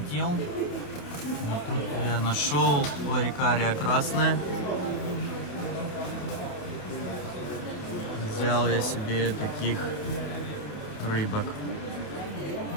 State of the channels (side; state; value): right; late; 28 ms